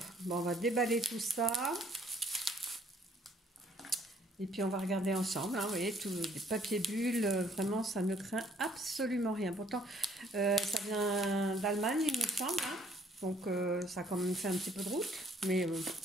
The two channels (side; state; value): both; normal; correlation 0.62